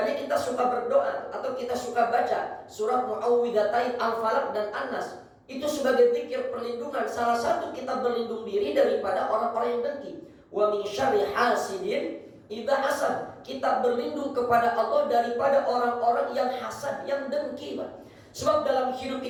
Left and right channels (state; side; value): identical; both; correlation 1.00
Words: kita suka berdoa atau kita suka baca surat Muawwidzatain Al-Falaq dan An-Nas. Itu sebagai zikir perlindungan. Salah satu kita berlindung diri daripada orang-orang yang dengki. Wa min syarri hasidin idza hasad. Kita berlindung kepada Allah daripada orang-orang yang hasad, yang dengki, Pak. Sebab dalam hidup